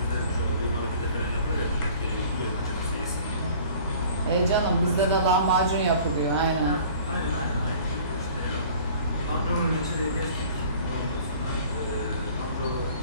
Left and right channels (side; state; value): both; inverted; correlation -0.49